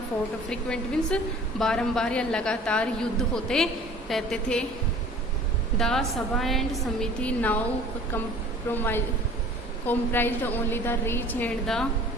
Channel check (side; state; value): both; normal; correlation 0.47